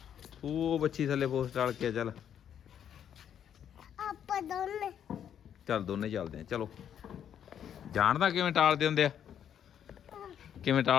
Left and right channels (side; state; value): right; quieter; 9.2 dB